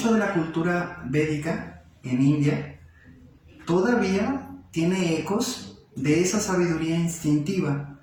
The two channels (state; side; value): identical; both; correlation 1.00